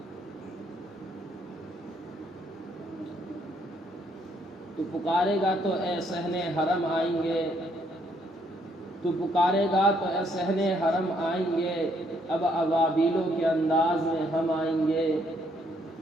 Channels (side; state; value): both; normal; correlation 0.70